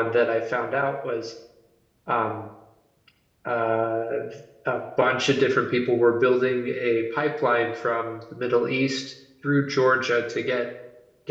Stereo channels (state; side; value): identical; both; correlation 1.00